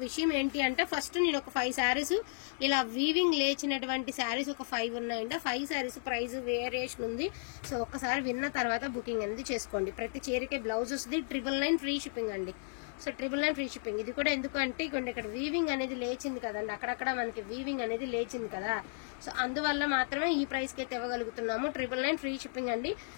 విషయం ఏంటి అంటే ఫస్ట్ నేను ఒక 5 శారీస్ ఇలా వీవింగ్ లేచినటువంటి శారీస్ ఒక 5 ఉన్నాయండి. 5 శారీస్ ప్రైస్ వేరియేషన్ ఉంది. సో ఒక్కసారి విన్న తర్వాత బుకింగ్ అనేది చేసుకోండి. ప్రతి చీరకే బ్లౌజ్ వస్తుంది. 999 ఫ్రీ షిప్పింగ్ అండి. So 999 free shipping. ఇది కూడా ఎందుకు అంటే ఇక్కడ వీవింగ్ అనేది లేచింది కదండి, అక్కడక్కడ మనకి వీవింగ్ అనేది లేచింది కదా. సో అందువల్ల మాత్రమే ఈ ప్రైస్ కి అయితే ఇవ్వగలుగుతున్నాము. 999 ఫ్రీ షిప్పింగ్ అండి.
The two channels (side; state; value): right; silent; 55 dB below the other